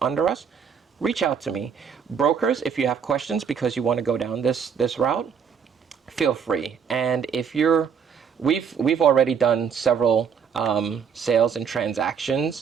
under us, reach out to me. Brokers, if you have questions because you want to go down this route, feel free. And if we've already done several sales and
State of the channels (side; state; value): left; quieter; 7.0 dB